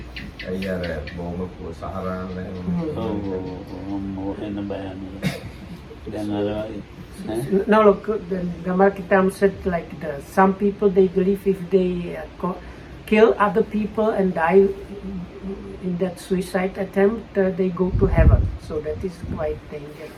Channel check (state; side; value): identical; both; correlation 1.00